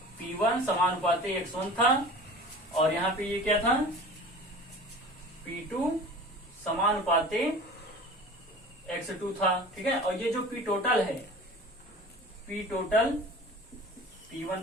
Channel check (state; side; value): normal; both; correlation 0.40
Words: P1 समानुपाती x1 था, और यहाँ पे ये क्या था, P2 समानुपाती x2 था। ठीक है, और ये जो P टोटल है, P total